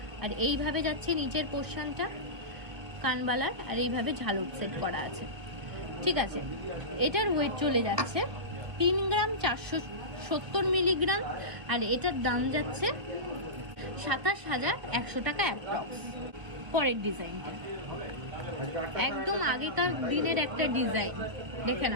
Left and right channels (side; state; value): left; late; 1.5 ms